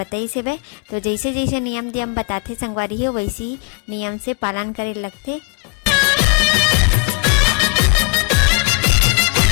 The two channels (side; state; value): right; quieter; 33.5 dB